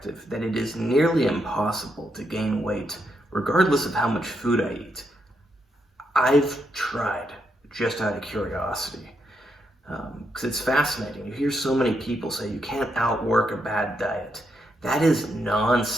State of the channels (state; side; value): normal; both; correlation 0.80